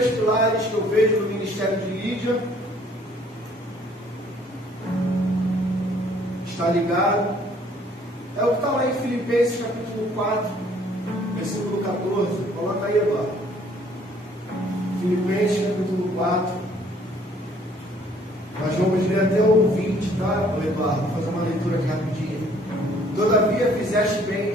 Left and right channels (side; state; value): both; normal; correlation 0.60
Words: pilares que eu vejo no ministério de Lídia, está ligado, é o que está lá em Filipenses capítulo 4, versículo 14. Coloca aí agora. Filipenses capítulo 4. Nós vamos ler até o 20, tá, Eduardo? Vou fazer uma leitura aqui rapidinho. Todavia fizeste bem